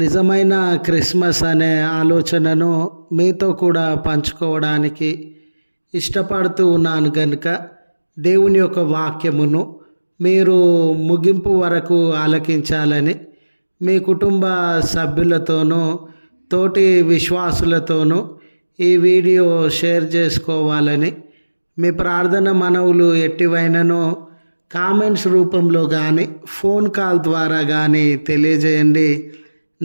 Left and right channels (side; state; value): both; inverted; correlation -1.00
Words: క్రిస్మస్ అనే ఆలోచనను మీతో కూడా పంచుకోవడానికి ఇష్టపడుతూ ఉన్నాను కనుక దేవుని యొక్క వాక్యమును మీరు ముగింపు వరకు ఆలకించాలని మీ కుటుంబ సభ్యులతోనూ తోటి విశ్వాసులతోనూ ఈ వీడియో షేర్ చేసుకోవాలని మీ ప్రార్థన మనవులు ఎట్టివైననో కామెంట్స్ రూపంలో కానీ ఫోన్ కాల్ ద్వారా కానీ తెలియజేయండి.